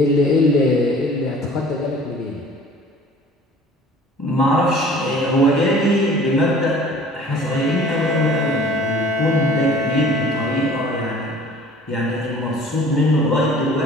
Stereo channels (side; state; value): both; normal; correlation 0.48